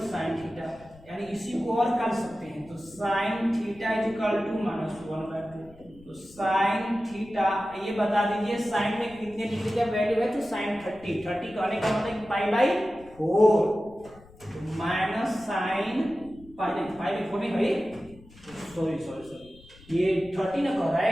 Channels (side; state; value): left; noise; rumble, 23 dB below the sound